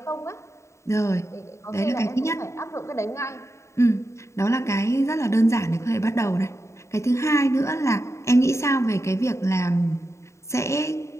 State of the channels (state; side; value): late; right; 0.14 ms